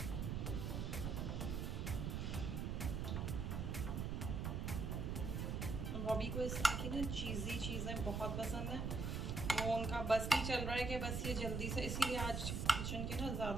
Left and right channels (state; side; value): noise; right; rumble, 1 dB below the sound